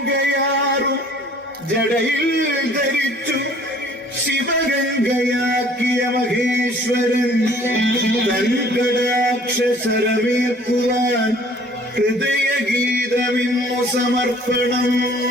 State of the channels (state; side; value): normal; both; correlation 0.54